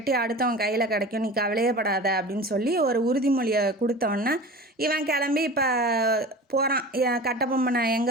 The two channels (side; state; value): both; normal; correlation 0.35